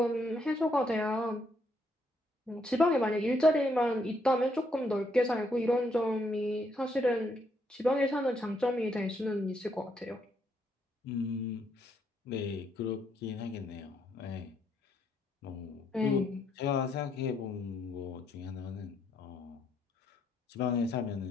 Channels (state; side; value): normal; both; correlation 0.74